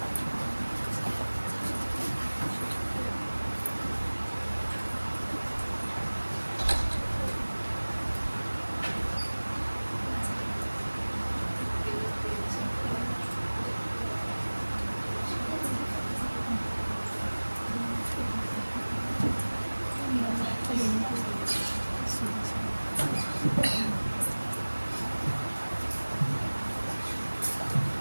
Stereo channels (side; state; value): both; inverted; correlation -1.00